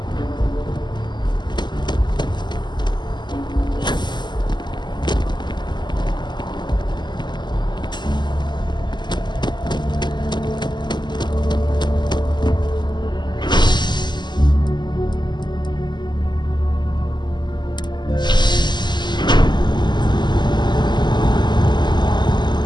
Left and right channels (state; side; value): late; right; 0.21 ms